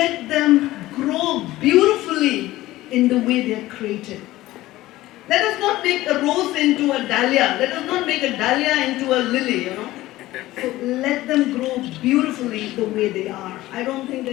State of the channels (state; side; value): quieter; right; 16.8 dB